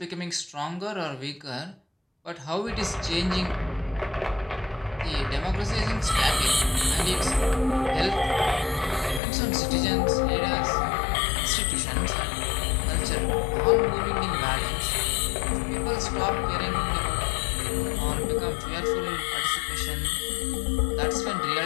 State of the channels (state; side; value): drops out; right; at 9.2 s